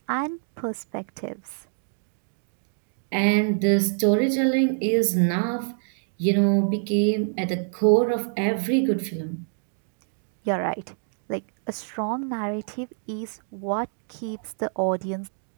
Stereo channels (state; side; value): silent; left; digital silence